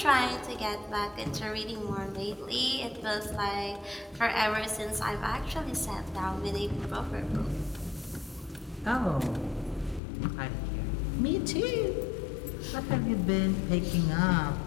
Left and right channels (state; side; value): drops out; right; at 10.0 s